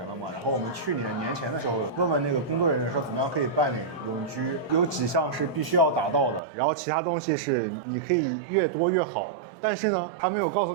了嘛。然后我们去年前的时候问那个工作人员说怎么样可以办理永居，有几项是必须要达到的，然后其他东西是你可以越多越好。但是呢，他没有告诉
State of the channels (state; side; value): drops out; left; at 6.4 s